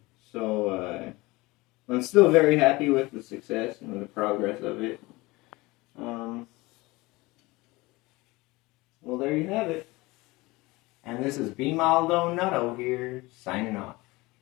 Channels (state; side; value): quieter; right; 22.0 dB